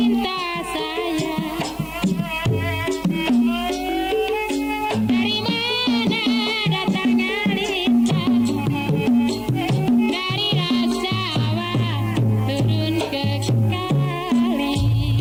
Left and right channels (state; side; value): identical; both; correlation 1.00